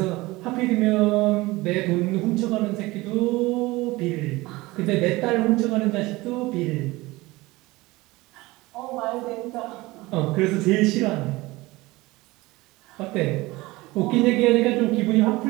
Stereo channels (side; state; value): left; quieter; 20.7 dB